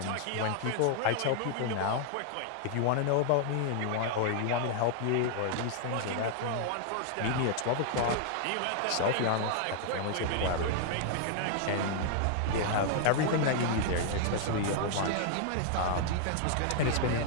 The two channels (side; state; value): both; different; correlation 0.00